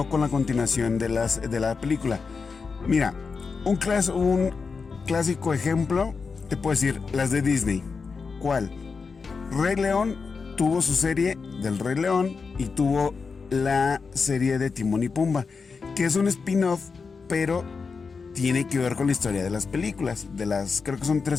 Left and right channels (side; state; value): right; quieter; 5.0 dB